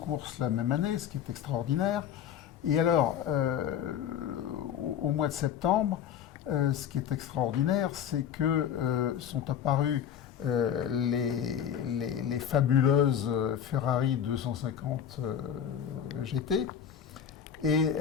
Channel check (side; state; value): right; quieter; 9.0 dB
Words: la même année, ce qui est extraordinaire. Et alors, au mois de septembre, ce qui est extraordinaire, c'est que sont apparues les fabuleuses Ferrari 250 GT. Et